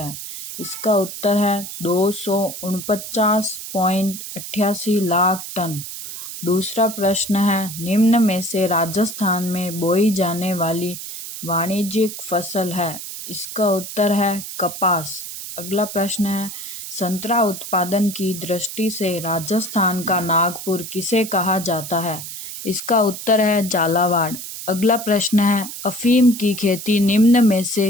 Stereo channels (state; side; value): noise; right; hiss, 9 dB below the sound